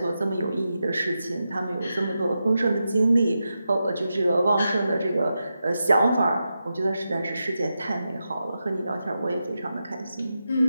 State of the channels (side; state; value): both; inverted; correlation -0.89